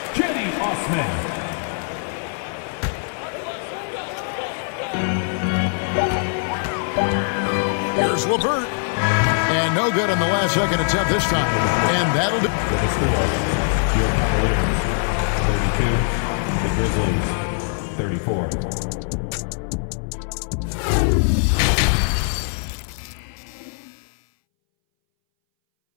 Kenny Osman. Here's LeVert. And no good on the last second attempt this time. And that'll do. The score, your Cavaliers 32, the Grizzlies 34.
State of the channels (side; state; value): right; silent; 62 dB below the other